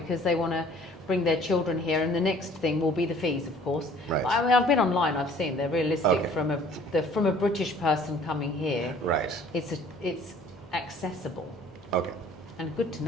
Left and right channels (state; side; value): normal; both; correlation 0.54